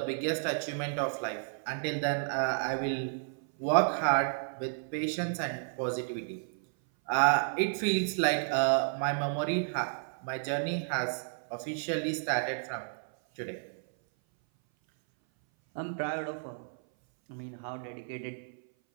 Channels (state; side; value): silent; left; 56 dB below the other